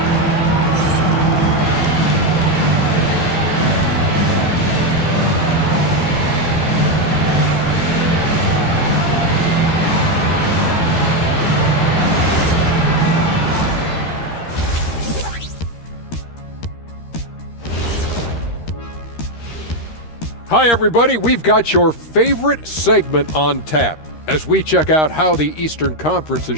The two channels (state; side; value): late; right; 13 ms